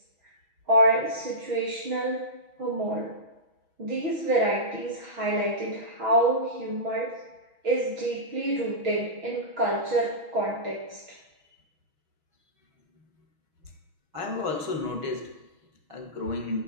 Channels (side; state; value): left; late; 6.3 ms